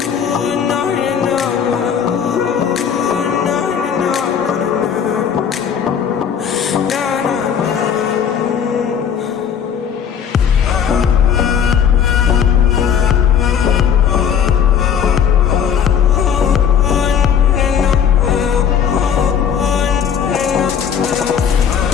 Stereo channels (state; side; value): quieter; right; 7.9 dB